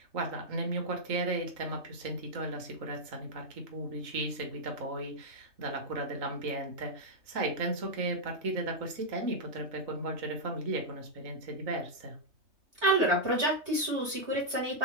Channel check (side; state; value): left; late; 3.2 ms